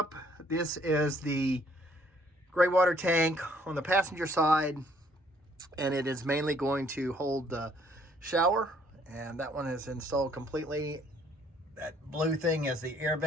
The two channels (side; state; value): both; normal; correlation 0.63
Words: This is the gray water tank on the passenger side, and it is mainly going to hold the shower. And that one is installed completely. That blue thing is the air